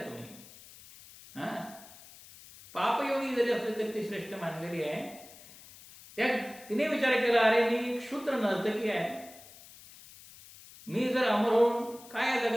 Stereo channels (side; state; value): left; noise; hiss, 20 dB below the sound